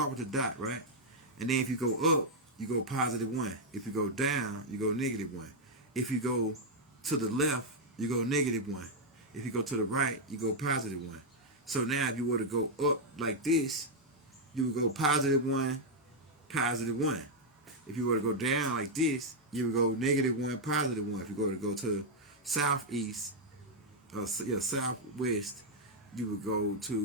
with the dot, right? And then if you go up, you go +1. If you go down, you go -1. If you go to the left, you go -1. If you go to the right, you go +1. So now if you were to go up like this, you would go +1, +1. If you were to go down like this, you would go -1, +1. If you were to go to southeast, southwest, you would go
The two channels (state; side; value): normal; both; correlation -0.02